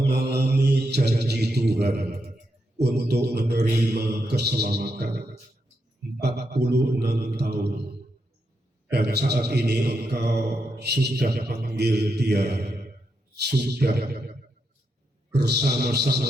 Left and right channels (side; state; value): both; normal; correlation 0.83